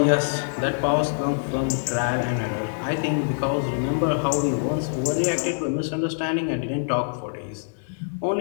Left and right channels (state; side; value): silent; right; 62 dB below the other